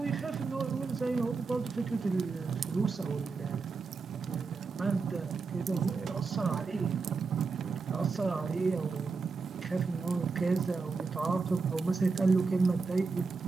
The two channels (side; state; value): left; quieter; 4.5 dB